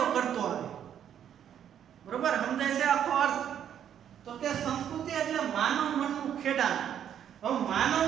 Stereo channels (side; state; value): left; quieter; 9.5 dB